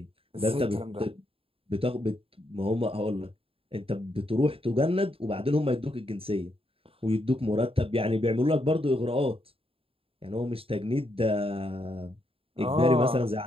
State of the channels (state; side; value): late; left; 0.27 ms